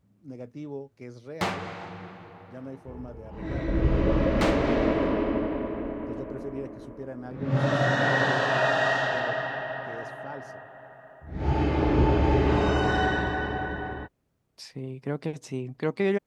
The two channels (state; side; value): identical; both; correlation 1.00